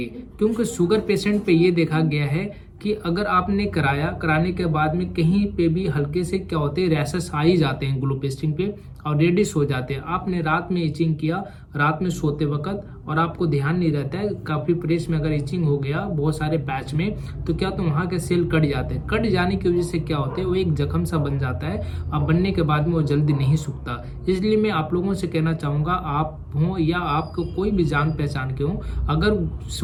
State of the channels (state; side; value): identical; both; correlation 1.00